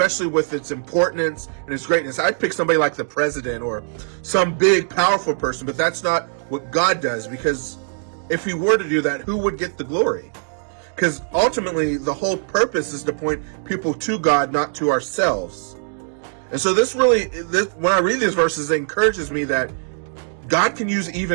with its importance and its greatness. I'd pick somebody like the president or some big, powerful person, but that's not what God does, because if he were to do that, who would get the glory? Because ultimately, the whole purpose is to point people to God, not to ourselves. And so when I read these verses, it encourages me that God can use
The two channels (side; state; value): left; silent; digital silence